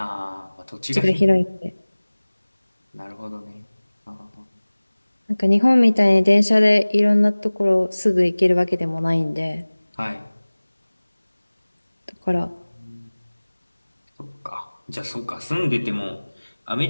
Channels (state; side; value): inverted; both; correlation -1.00